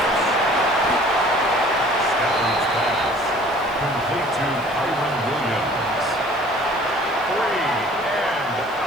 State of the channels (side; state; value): left; noise; hiss, 26 dB below the sound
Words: Stafford's pass. Complete to Kyron Williams. 3 and